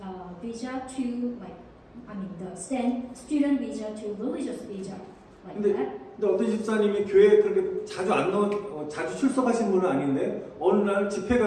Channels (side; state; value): both; identical; correlation 1.00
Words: visa to the student visa to religious visa, like that. 근데 어떤 집사님이 교회에 그렇게 자주 출석하신 분은 아닌데 어느 날 집회가